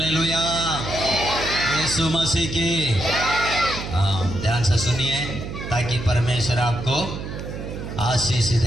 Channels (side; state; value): right; noise; hum, 8 dB below the sound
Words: यीशु मसीह की ध्यान से सुनिए ताकि परमेश्वर आपको आशीष